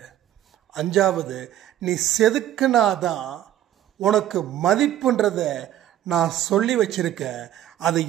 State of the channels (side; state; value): left; quieter; 12.2 dB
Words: அஞ்சாவது, நீ செதுக்குனாதான் உனக்கு மதிப்புன்றத நான் சொல்லி வச்சிருக்கேன், அது